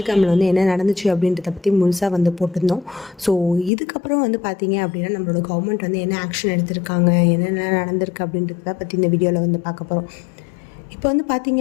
வந்து என்ன நடந்துச்சு அப்படின்றத பற்றி முழுசாக வந்து போட்டிருந்தோம். ஸோ இதுக்கப்புறம் வந்து பார்த்திங்க அப்படின்னா நம்மளோட கவர்மெண்ட் வந்து என்ன ஆக்ஷன் எடுத்திருக்காங்க, என்னென்ன நடந்திருக்கு அப்படின்றத பற்றி இந்த வீடியோவில் வந்து பார்க்க போகிறோம். இப்போ வந்து பார்த்தீங்க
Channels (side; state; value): right; drops out; at 3.7 s